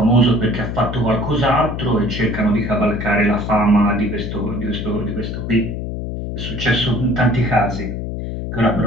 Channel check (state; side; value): noise; left; hum, 5 dB below the sound